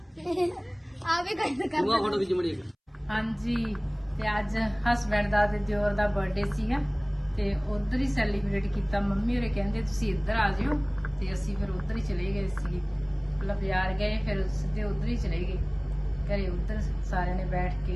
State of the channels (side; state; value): both; identical; correlation 1.00